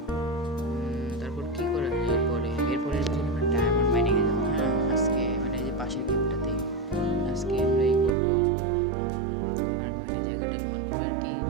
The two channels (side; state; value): left; drops out; at 8.2 s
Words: তারপর কি করা যায় এরপরে আমরা ডায়মন্ড মাইনিং এ যাবো। হ্যাঁ আজকে এই যে পাশের গেমটাতে আজকে আমরা করবো।